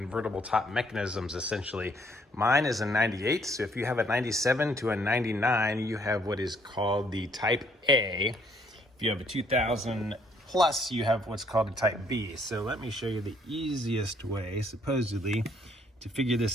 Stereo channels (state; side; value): normal; both; correlation 0.66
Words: top mechanisms, essentially. Mine is a 98, so if you have a 97 to a 99, you have what is called the Type A. If you have a 2000 plus, you have what's called a Type B. So let me show you the easiest way, supposedly, to figure